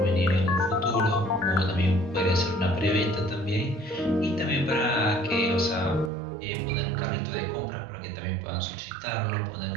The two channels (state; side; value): drops out; left; at 6.1 s